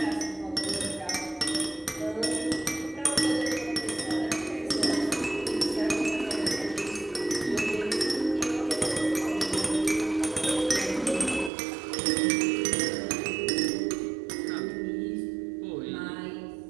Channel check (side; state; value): left; drops out; at 11.5 s